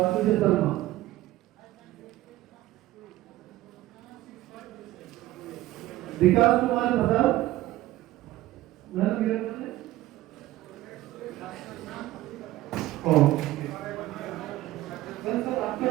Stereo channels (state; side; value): quieter; left; 16.0 dB